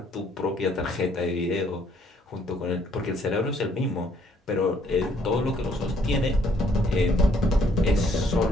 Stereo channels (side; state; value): both; normal; correlation 0.66